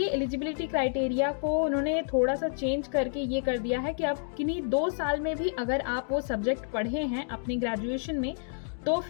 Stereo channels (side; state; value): right; silent; digital silence